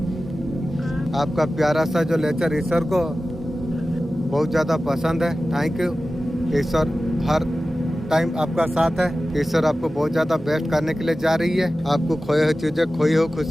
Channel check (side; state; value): both; normal; correlation 0.95